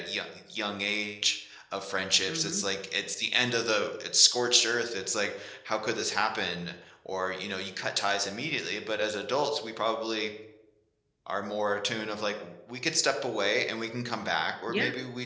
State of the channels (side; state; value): both; identical; correlation 1.00